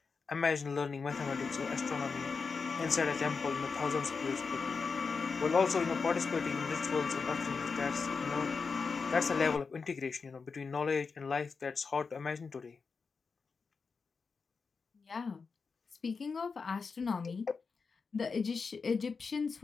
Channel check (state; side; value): quieter; right; 5.0 dB